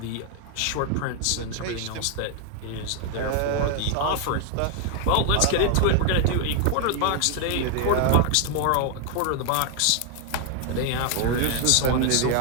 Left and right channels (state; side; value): different; both; correlation 0.00